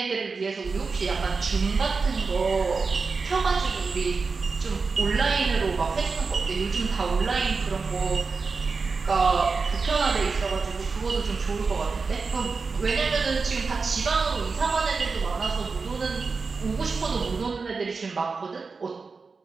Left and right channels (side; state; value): left; quieter; 4.5 dB